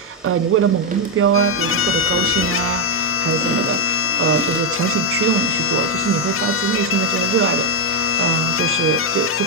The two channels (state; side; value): normal; both; correlation 0.02